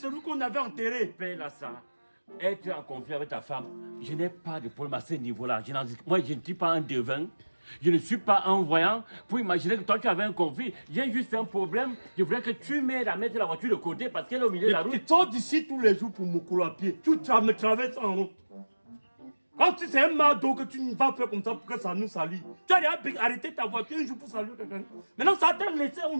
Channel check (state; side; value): inverted; both; correlation -1.00